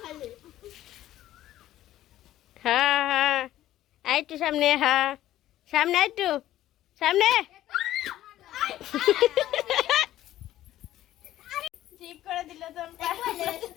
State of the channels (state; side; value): quieter; right; 13.7 dB